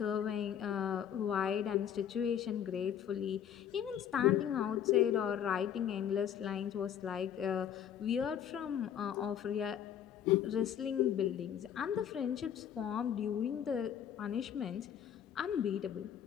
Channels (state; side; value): quieter; right; 9.3 dB